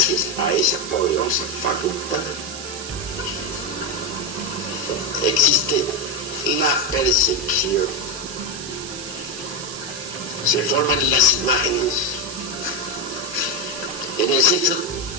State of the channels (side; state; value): right; noise; hiss, 9 dB below the sound